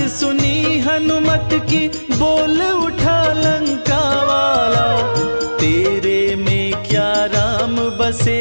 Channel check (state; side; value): inverted; both; correlation -1.00